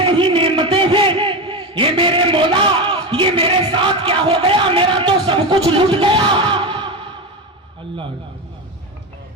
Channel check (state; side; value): normal; both; correlation 0.18